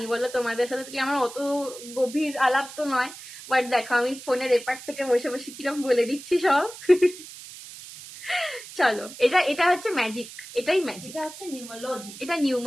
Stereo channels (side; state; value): right; noise; hiss, 15 dB below the sound